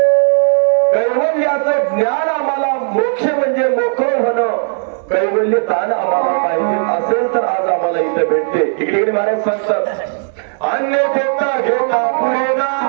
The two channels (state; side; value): silent; left; digital silence